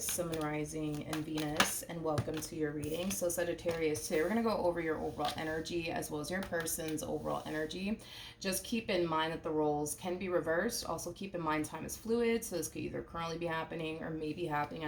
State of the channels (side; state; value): both; identical; correlation 1.00